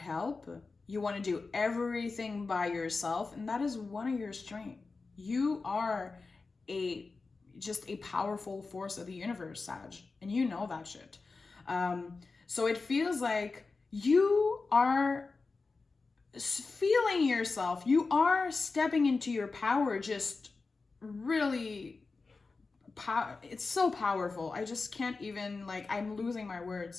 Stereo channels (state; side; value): quieter; right; 4.0 dB